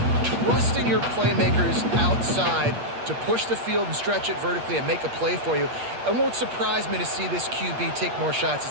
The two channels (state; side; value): late; left; 8.5 ms